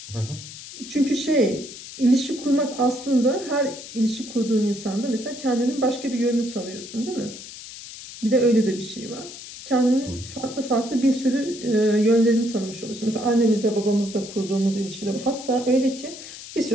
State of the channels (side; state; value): left; noise; hiss, 13 dB below the sound